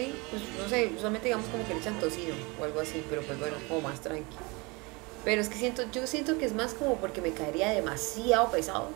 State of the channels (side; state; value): left; quieter; 26.8 dB